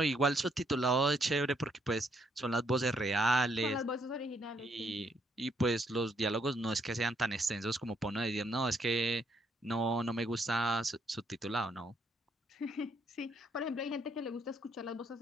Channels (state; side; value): normal; both; correlation 0.72